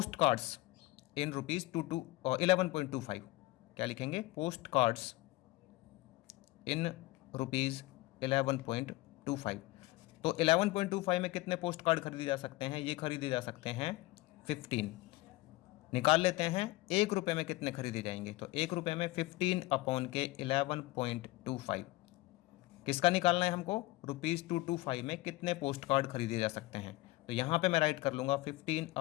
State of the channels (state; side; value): quieter; right; 19.9 dB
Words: कार्ड्स इन ₹11.25। क्या लिखेंगे, पोस्ट कार्ड्स इन ₹11.25। तो 11.25 में कितने पोस्ट कार्ड खरीदे जा सकते हैं, ये खरीदे जा सकते हैं 15। निकाल लेते हैं ₹1 में कितने खरीदे जाएंगे, तो ₹1 में 15 अपॉन के 11.25। किसका निकालना है हमको, ₹225 में कितने पोस्ट कार्ड खरीदे जा सकते हैं। तो यहाँ पे मैं राइट कर लूँगा 15